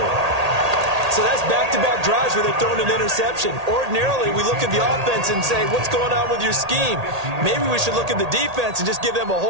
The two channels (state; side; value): late; left; 1.8 ms